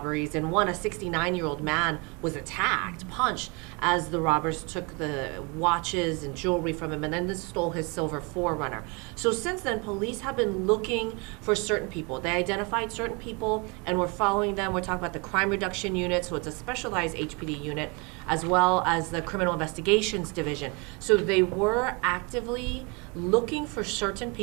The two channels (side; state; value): left; quieter; 30.5 dB